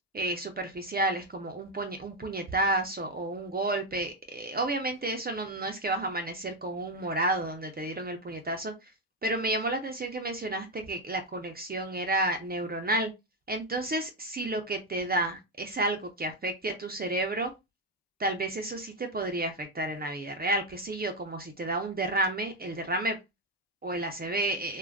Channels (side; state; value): both; normal; correlation 0.06